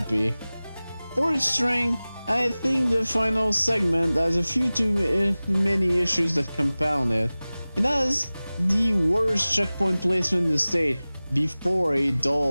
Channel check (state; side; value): inverted; both; correlation -0.98